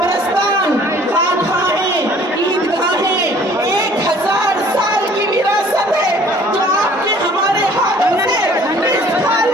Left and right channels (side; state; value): both; normal; correlation 0.54